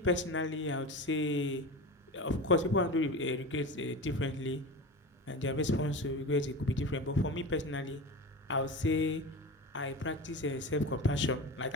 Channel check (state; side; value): normal; both; correlation 0.28